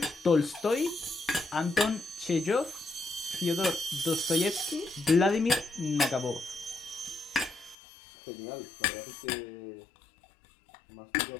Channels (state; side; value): drops out; right; at 7.8 s